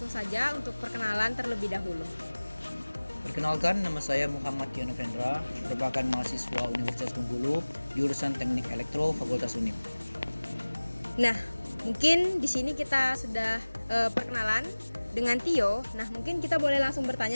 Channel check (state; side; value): inverted; both; correlation -1.00